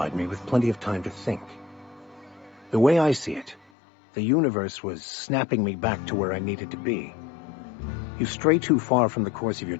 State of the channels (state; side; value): drops out; right; at 3.7 s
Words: me with plenty of time to think. The way I see it, the universe was snapping me back to where I needed to be. You stray too far from the course of your